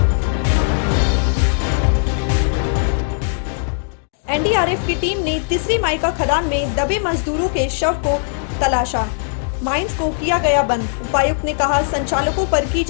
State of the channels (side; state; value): right; silent; digital silence